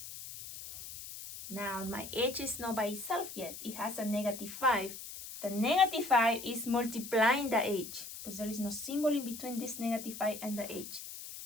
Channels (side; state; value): left; noise; hiss, 11 dB below the sound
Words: Now, my h is not by itself yet. It has a negative 5. The negative 5 is multiplying the h, because there is no symbol in between this negative 5 and the h.